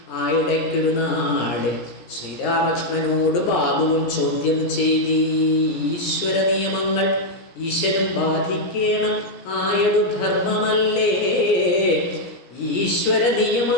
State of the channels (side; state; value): right; late; 17 ms